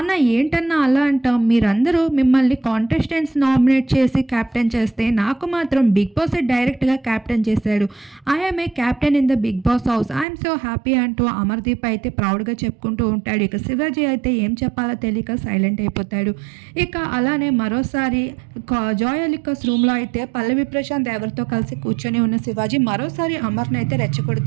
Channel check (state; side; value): drops out; left; at 10.2 s